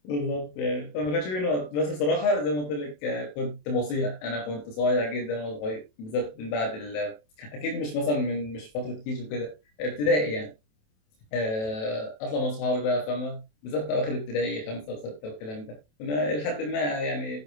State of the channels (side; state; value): right; late; 27 ms